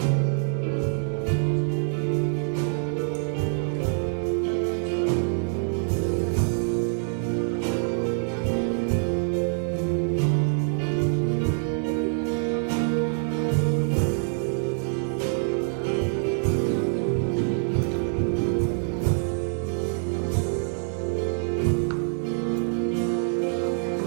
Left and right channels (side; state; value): left; silent; 61 dB below the other